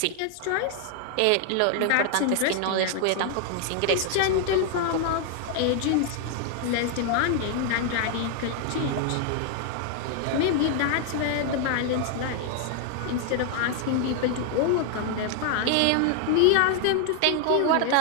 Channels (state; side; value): different; both; correlation 0.00